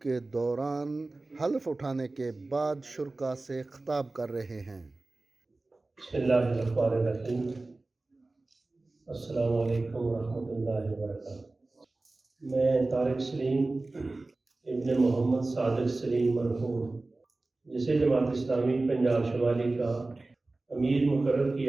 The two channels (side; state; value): left; quieter; 3.2 dB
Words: کے دوران حلف اٹھانے کے بعد شرکاء سے خطاب کر رہے ہیں۔ بسم اللہ الرحمن الرحیم۔ السلام علیکم ورحمۃ اللہ وبرکاتہ۔ میں طارق سلیم ابن محمد صادق سلیم مرحوم، جسے جماعت اسلامی پنجاب شمالی کا امیر مقرر